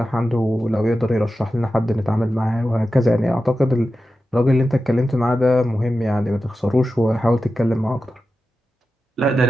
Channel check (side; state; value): both; normal; correlation 0.92